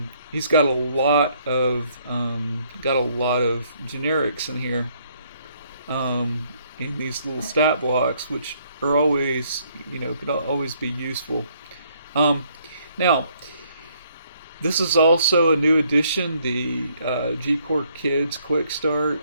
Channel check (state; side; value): inverted; both; correlation -0.67